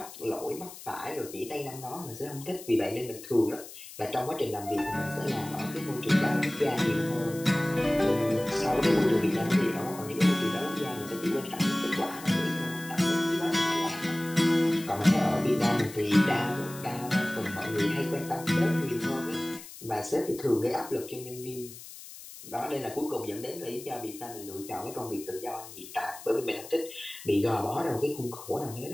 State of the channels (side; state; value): left; noise; hiss, 15 dB below the sound